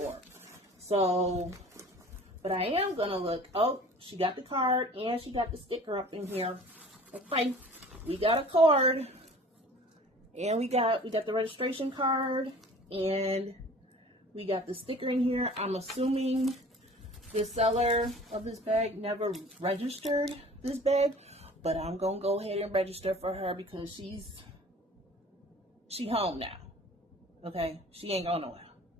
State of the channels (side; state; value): both; normal; correlation 0.46